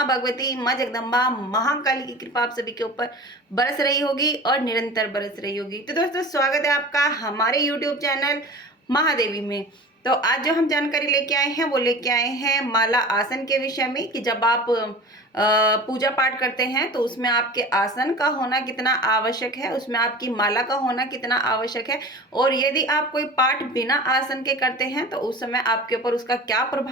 भगवती, मां जगदम्बा, महाकाली की कृपा आप सभी के ऊपर बरस रही होगी और निरंतर बरस रही होगी। तो दोस्तों, स्वागत है आपका हमारे यूट्यूब चैनल महादेवी में। तो आज जो हम जानकारी लेके आए हैं वो लेके आए हैं माला आसन के विषय में, कि जब आप पूजा पाठ करते हैं तो उसमें आपके आसन का होना कितना आवश्यक है, उसमें आपकी माला का होना कितना आवश्यक है, और यदि आप कोई पाठ बिना आसन के करते हैं तो उस समय आपके ऊपर उसका क्या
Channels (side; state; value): both; normal; correlation 0.37